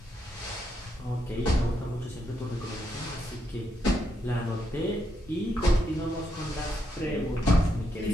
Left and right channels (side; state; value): both; normal; correlation 0.80